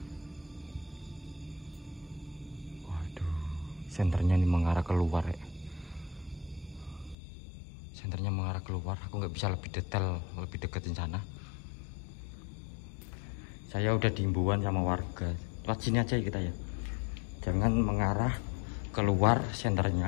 Waduh, senternya ini mengarah keluar ya. Senternya mengarah keluar. Aku nggak bisa lebih detail, lebih deketin sana. Saya udah diimbauan sama warga. Lewat sini aja ya kita ya. Jangan mengarah keluar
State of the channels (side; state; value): right; drops out; at 7.2 s